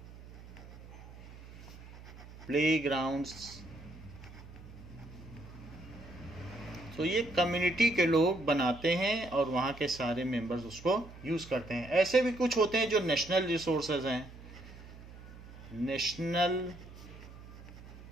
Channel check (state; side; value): noise; right; hum, 17 dB below the sound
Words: playgrounds. तो ये कम्युनिटी के लोग बनाते हैं और वहाँ के सारे मेंबर्स उसको यूज करते हैं. ऐसे भी कुछ होते हैं जो नेशनल रिसोर्सेज हैं. नेशनल